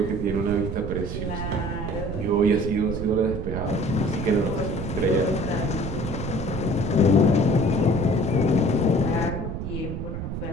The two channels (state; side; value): noise; right; rumble, 5 dB below the sound